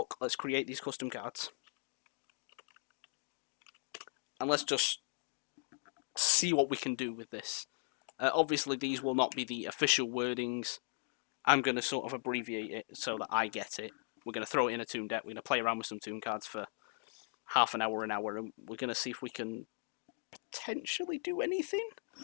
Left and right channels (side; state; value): right; silent; 52 dB below the other